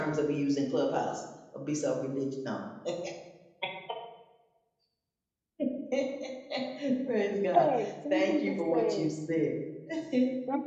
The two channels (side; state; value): both; identical; correlation 1.00